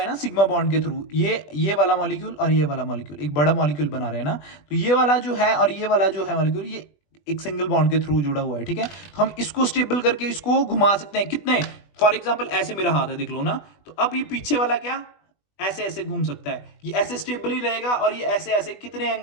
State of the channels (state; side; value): late; right; 20 ms